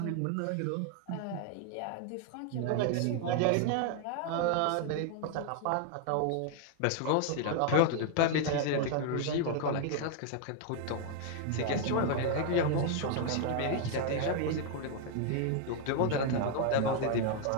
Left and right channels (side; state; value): both; different; correlation 0.00